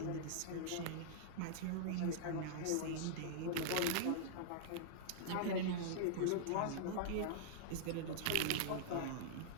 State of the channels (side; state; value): both; different; correlation -0.02